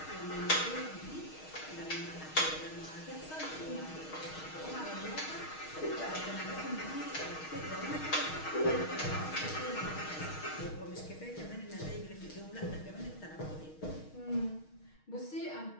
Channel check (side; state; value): right; late; 6.4 ms